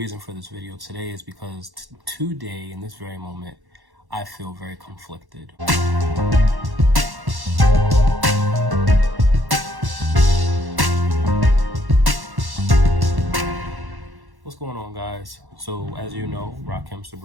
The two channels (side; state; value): left; late; 1.1 ms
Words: for this video today is because today, in this very moment, I feel very conflicted. What's going on, guys? So as you know, Rahkim